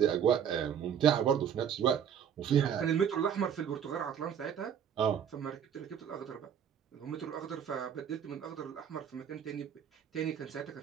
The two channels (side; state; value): left; quieter; 8.4 dB